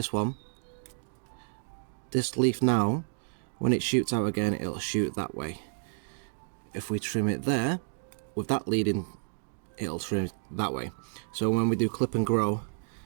one, this leaf now, when it shoots out again, it'll shoot that way. If we trim it there, with that leading, it'll trim that way. So when we do clip and grow,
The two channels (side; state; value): left; silent; digital silence